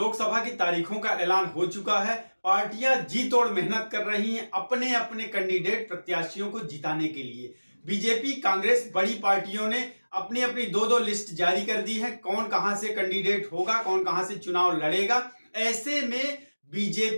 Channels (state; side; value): inverted; both; correlation -1.00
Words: की तारीखों का ऐलान हो चुका है। पार्टियां जी तोड़ मेहनत कर रही हैं अपने अपने कैंडिडेट प्रत्याशियों को जिताने के लिए। बीजेपी, कांग्रेस, बड़ी पार्टियों ने अपनी अपनी दो लिस्ट जारी कर दी है। कौन कहां से कैंडिडेट होगा, कौन कहां से चुनाव लड़ेगा। ऐसे में